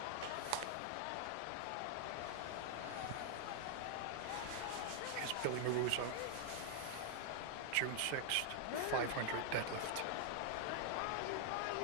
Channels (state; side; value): different; both; correlation 0.00